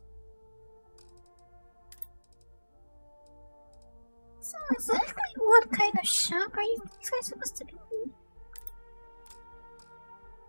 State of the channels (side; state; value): both; inverted; correlation -1.00